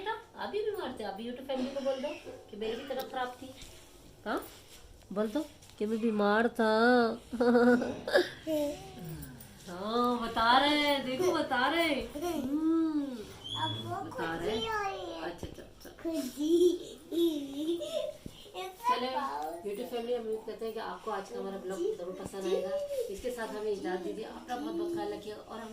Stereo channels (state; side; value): identical; both; correlation 1.00